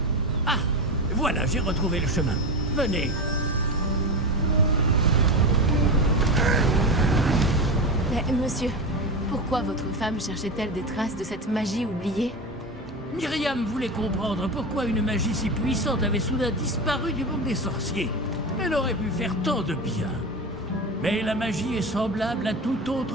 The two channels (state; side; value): normal; both; correlation 0.21